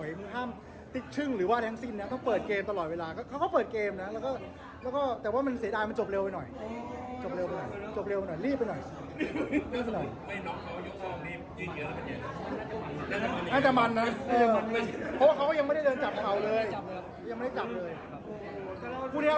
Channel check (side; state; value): both; identical; correlation 1.00